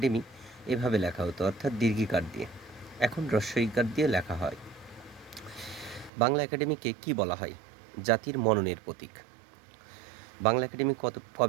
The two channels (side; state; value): left; drops out; at 6.1 s